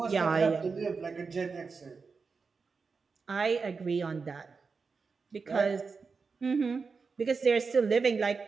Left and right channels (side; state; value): left; quieter; 4.9 dB